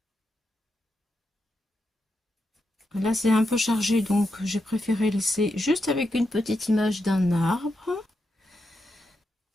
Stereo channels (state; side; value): normal; both; correlation 0.85